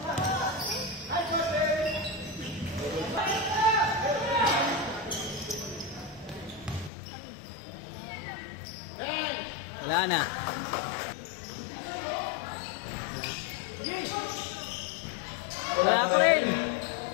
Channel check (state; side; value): drops out; right; at 6.9 s